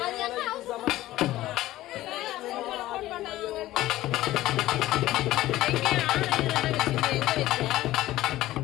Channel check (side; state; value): right; quieter; 15.7 dB